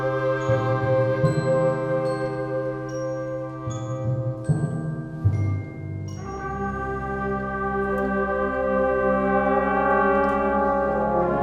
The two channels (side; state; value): both; identical; correlation 1.00